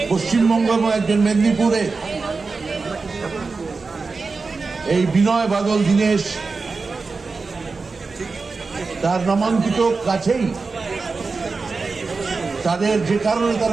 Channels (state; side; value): quieter; left; 4.2 dB